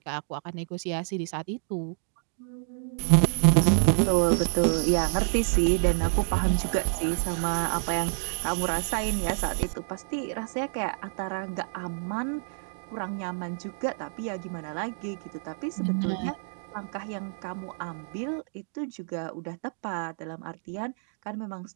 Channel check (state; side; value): silent; left; 59 dB below the other